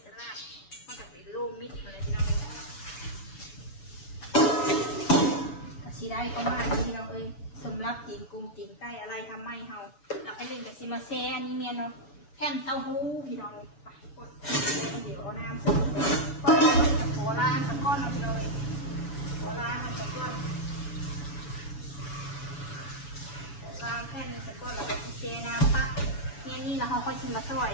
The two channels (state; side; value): late; right; 6.9 ms